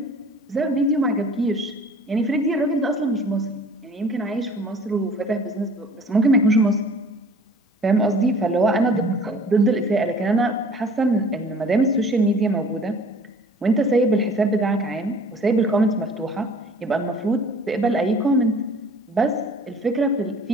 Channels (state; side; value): normal; both; correlation 0.49